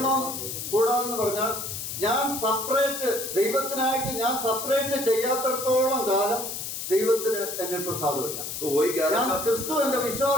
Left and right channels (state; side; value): noise; left; hiss, 6 dB below the sound